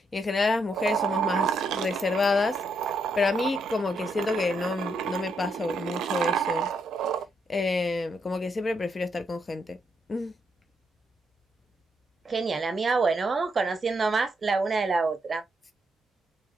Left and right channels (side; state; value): both; normal; correlation 0.78